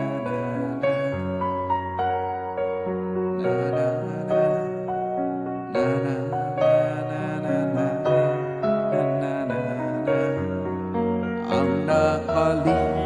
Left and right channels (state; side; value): identical; both; correlation 1.00